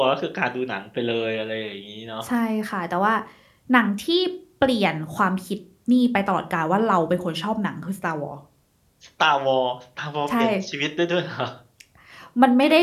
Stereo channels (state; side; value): identical; both; correlation 1.00